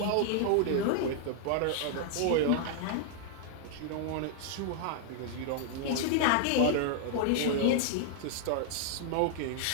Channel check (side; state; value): both; different; correlation -0.01